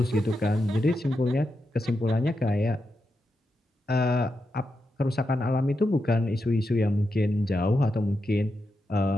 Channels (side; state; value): both; normal; correlation 0.87